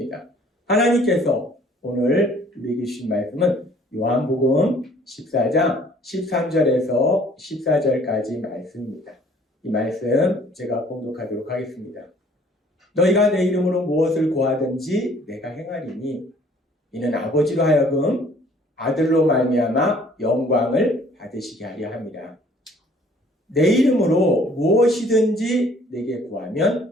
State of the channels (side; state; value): both; normal; correlation 0.57